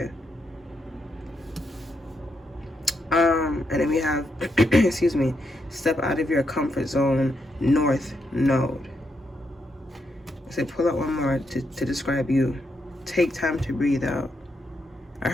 And then we have, excuse me, step out of your comfort zone, North Node. I said pull out one more to describe you. Take time to breathe out. I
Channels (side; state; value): both; normal; correlation 0.81